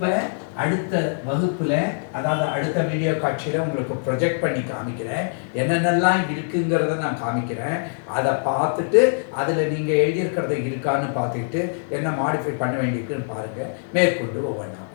அடுத்த வகுப்பில், அதாவது அடுத்த வீடியோ காட்சியில் உங்களுக்கு ப்ரொஜெக்ட் பண்ணி காமிக்கிறேன். என்னென்னலாம் இருக்குங்கிறத நான் காமிக்கிறேன். அதை பார்த்துட்டு அதில் நீங்கள் எழுதியிருக்கிறத இருக்கான்னு பார்த்துக்கிட்டு என்ன மாடிஃபை பண்ண வேண்டியிருக்குன்னு பாருங்கள். மேற்கொண்டு ஒவ்வொன்றா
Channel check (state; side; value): silent; right; digital silence